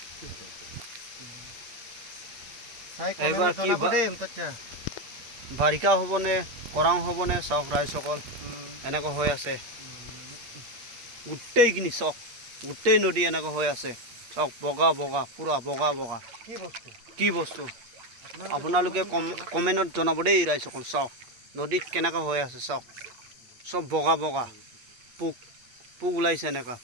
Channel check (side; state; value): left; late; 8.4 ms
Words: এইবাৰ কি বাৰিষা হ'বনে খৰাং হ'বনে চাওক ৰাইজসকল এনেকুৱা হৈ আছে গোটেইখিনি চাওক গোটেই নদী এনেকুৱা হৈ আছে চাওক বগা বগা পূৰা বগা বগা কি বস্তু আপোনালোকে কমেণ্টত জনাব দেই ৰাইজসকল চাওক নদীত কেনেকুৱা হৈ আছে চাওক চব বগা বগা পোক পোক ওলাইছে এনেকুৱা